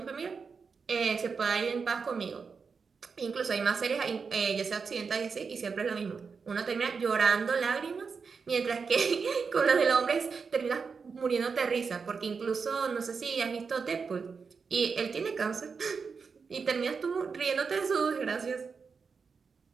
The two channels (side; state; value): left; quieter; 5.4 dB